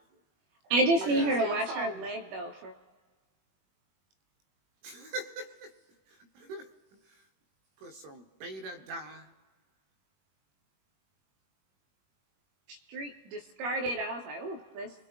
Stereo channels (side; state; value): left; late; 21 ms